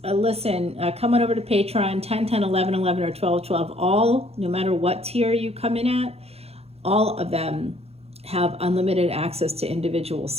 listen, come on over to Patreon, 10, 10, 11, 11, or 12, 12. All, no matter what tier you come in at, all of them have unlimited access to individual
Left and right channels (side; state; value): left; late; 0.29 ms